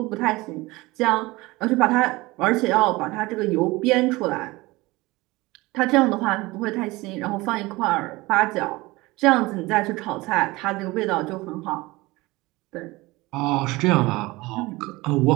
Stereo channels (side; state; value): left; quieter; 21.4 dB